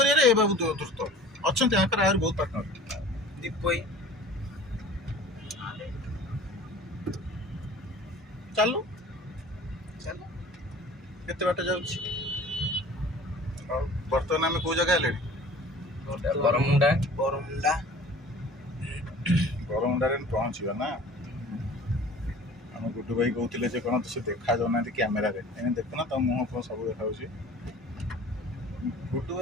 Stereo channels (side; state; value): both; normal; correlation 0.45